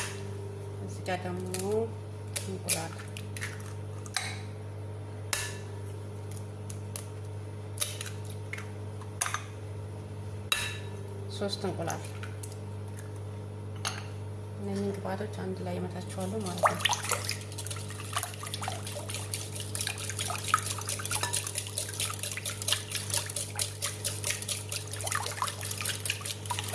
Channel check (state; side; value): identical; both; correlation 1.00